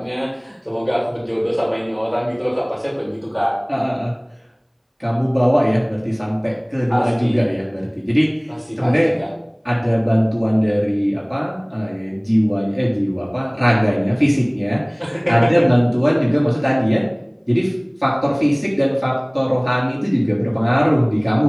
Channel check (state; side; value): identical; both; correlation 1.00